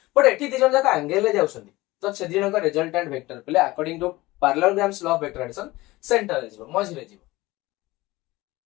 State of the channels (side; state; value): right; quieter; 19.7 dB